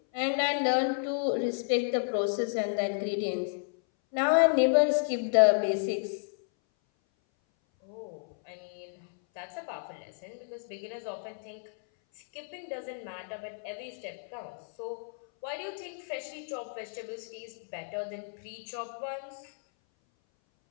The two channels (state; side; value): silent; right; 57 dB below the other